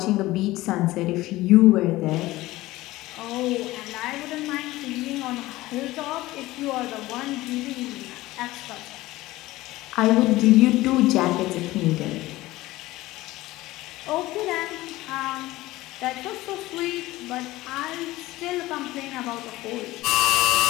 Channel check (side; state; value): right; quieter; 18.0 dB